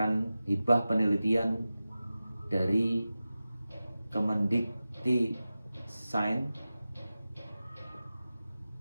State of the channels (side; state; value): both; inverted; correlation -0.95